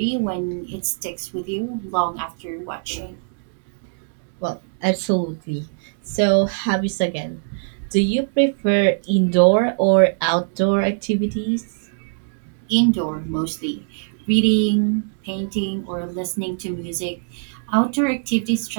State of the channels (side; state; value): left; silent; digital silence